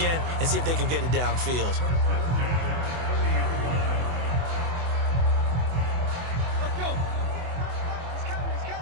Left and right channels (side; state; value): left; late; 24 ms